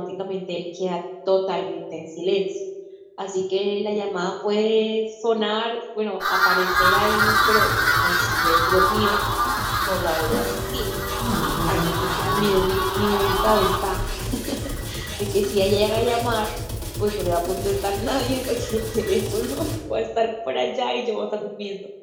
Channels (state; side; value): identical; both; correlation 1.00